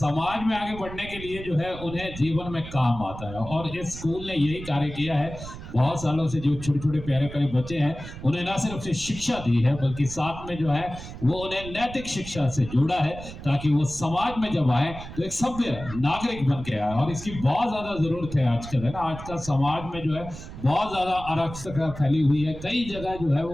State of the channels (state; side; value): noise; right; rumble, 12 dB below the sound